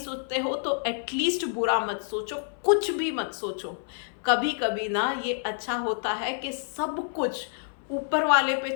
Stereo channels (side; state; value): right; silent; 59 dB below the other